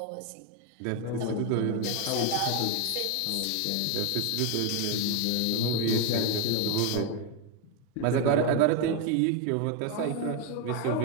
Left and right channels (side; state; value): both; different; correlation 0.02